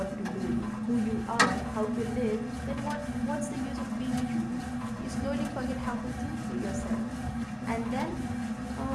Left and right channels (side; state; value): both; identical; correlation 1.00